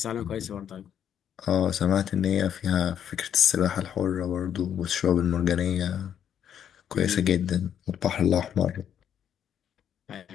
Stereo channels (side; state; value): right; quieter; 9.3 dB